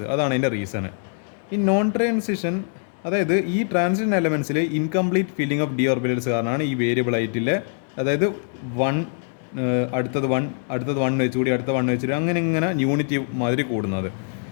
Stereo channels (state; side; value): silent; right; digital silence